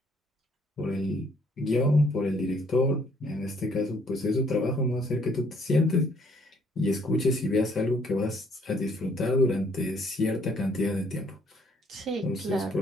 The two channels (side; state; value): both; normal; correlation 0.64